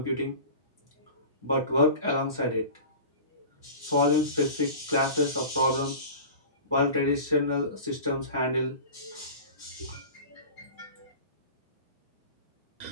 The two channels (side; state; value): both; inverted; correlation -0.36